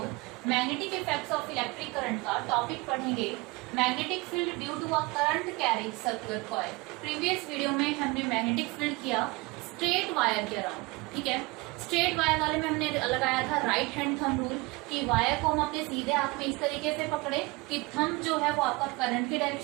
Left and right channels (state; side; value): quieter; left; 25.3 dB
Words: magnetic effects of electric current का टॉपिक पढ़ेंगे। Magnetic field due to a current carrying circular coil. Previous video में हमने मैग्नेटिक फील्ड किया स्ट्रेट वायर के अराउंड, ठीक है। स्ट्रेट वायर वाले में हमने लगाया था राइट हैंड थंब रूल कि वायर को हम अपने सीधे हाथ में इस तरीके से पकड़े कि थंब जो है वो आपका करंट की